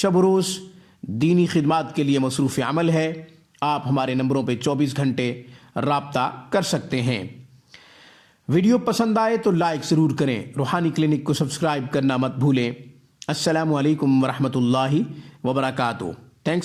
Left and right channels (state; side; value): identical; both; correlation 1.00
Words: و روز دینی خدمات کے لیے مصروف عمل ہے۔ آپ ہمارے نمبروں پہ 24 گھنٹے رابطہ کر سکتے ہیں۔ ویڈیو پسند آئے تو لائک ضرور کریں، روحانی کلینک کو سبسکرائب کرنا مت بھولیں۔ السلام علیکم ورحمۃ اللہ وبرکاتہ۔